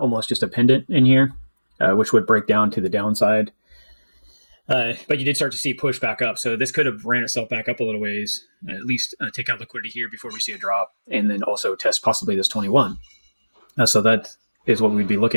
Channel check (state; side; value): inverted; both; correlation -1.00